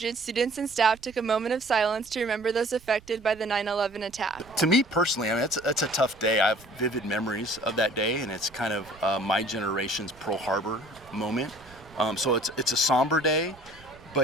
students and staff took a moment of silence to remember those affected by the 9/11 attack. To me personally, I mean, it's a tough day. I have vivid memories of that day, and it's kind of my generation's Pearl Harbor moment. So it's a somber day,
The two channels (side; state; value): right; noise; rumble, 24 dB below the sound